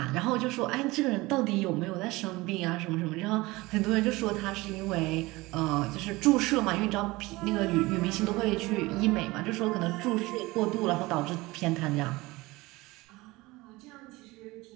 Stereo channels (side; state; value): left; quieter; 21.2 dB